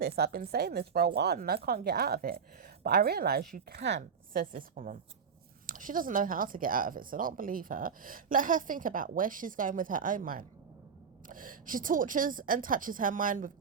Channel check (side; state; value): left; quieter; 6.4 dB